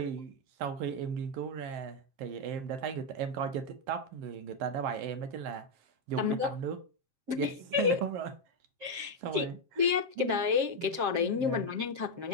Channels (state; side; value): late; left; 7.5 ms